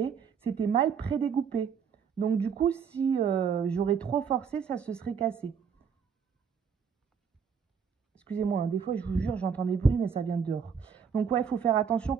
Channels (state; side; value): quieter; left; 6.7 dB